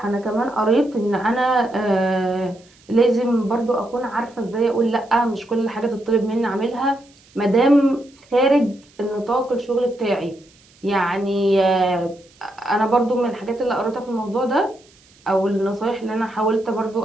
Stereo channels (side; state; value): right; noise; hiss, 29 dB below the sound